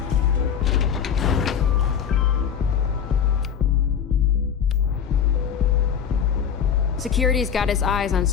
Security's got his eyes on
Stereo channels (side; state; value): right; quieter; 7.8 dB